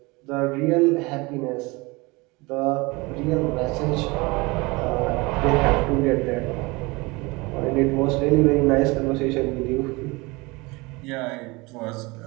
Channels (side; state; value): left; quieter; 24.6 dB